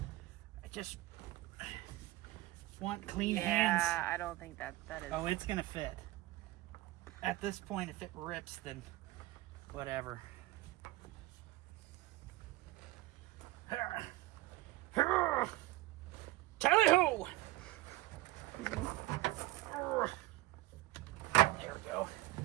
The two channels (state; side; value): quieter; left; 18.6 dB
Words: just want clean hands. Yeah, I don't think that is. Oh, it's gonna fit. At this point, if it rips, then whatever. Tally-ho! There we go.